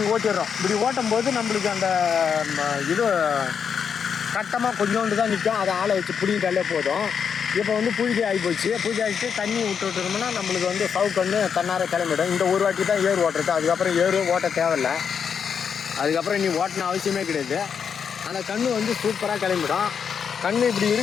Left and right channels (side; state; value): right; quieter; 7.0 dB